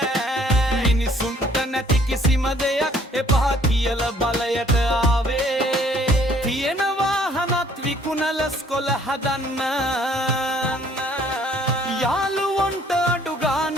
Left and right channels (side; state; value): both; normal; correlation 0.60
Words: මිනිසුන්ට නැති කිසිම දෙයක් එපා කියල බලයට ආවේ. තියෙන වාහනත් විකුණල ස්කොල හදන්න. යාළුවොන්ට අඩු